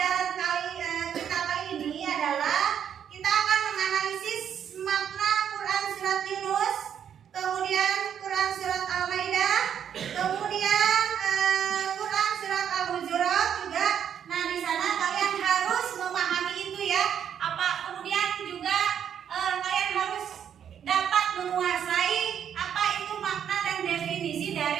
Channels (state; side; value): quieter; left; 8.8 dB